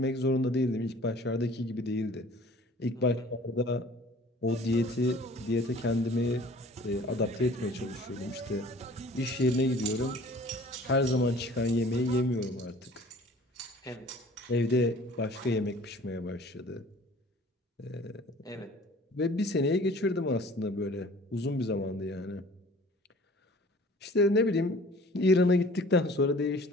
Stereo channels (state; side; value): normal; both; correlation 0.49